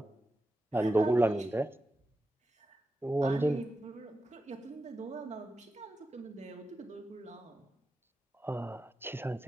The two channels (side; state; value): both; normal; correlation 0.91